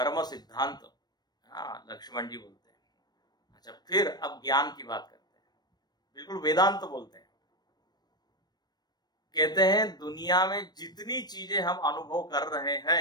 सिद्धांत, हाँ, लक्ष्मण जी बोलते हैं। अच्छा, फिर अब ज्ञान की बात करते हैं, बिल्कुल वेदांत बोलते हैं। कहते हैं दुनिया में जितनी चीजें हम अनुभव कर रहे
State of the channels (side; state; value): right; late; 0.19 ms